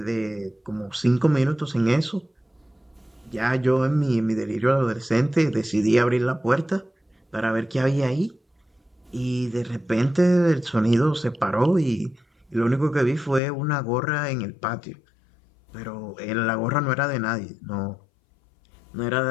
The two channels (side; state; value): right; drops out; at 13.4 s